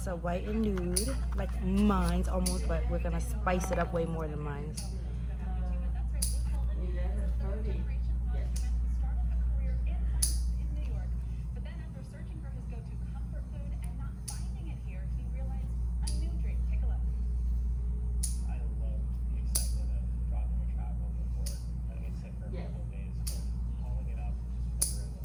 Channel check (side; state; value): both; identical; correlation 1.00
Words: A white and nude, like mine's almost, but we're gonna spice it up way more than mine's.